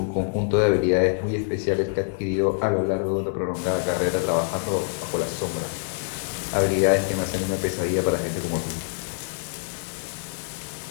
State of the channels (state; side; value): silent; right; 56 dB below the other